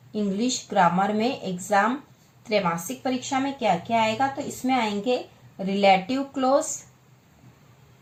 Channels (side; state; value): both; identical; correlation 1.00